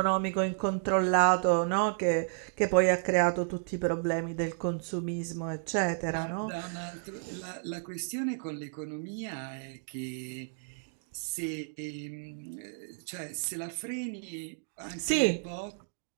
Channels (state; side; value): silent; left; digital silence